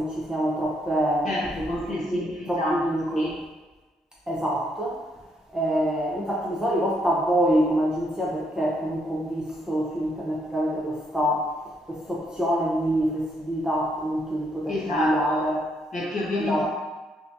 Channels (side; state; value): both; normal; correlation 0.74